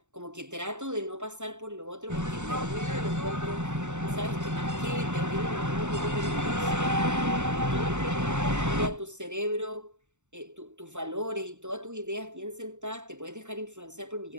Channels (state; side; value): late; left; 0.84 ms